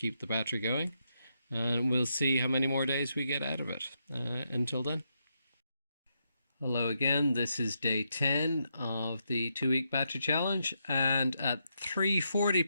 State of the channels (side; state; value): both; inverted; correlation -0.81